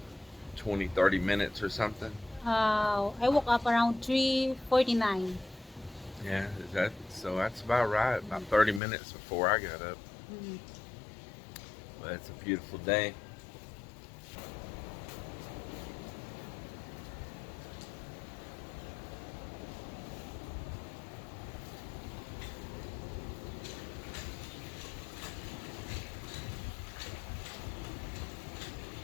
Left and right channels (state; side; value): drops out; right; at 8.8 s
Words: 20, 30 minutes or something. I woke up around 3:49. Yeah, so that's about right. About 30 minutes before I got up. Mm. But it's a beautiful day.